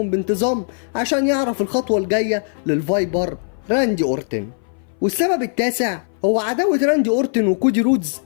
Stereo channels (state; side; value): silent; right; 61 dB below the other